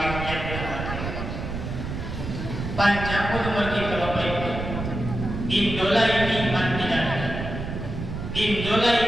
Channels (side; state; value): right; noise; rumble, 6 dB below the sound